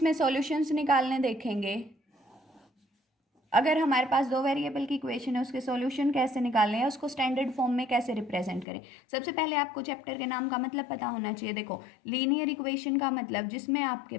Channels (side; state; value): right; drops out; at 8.7 s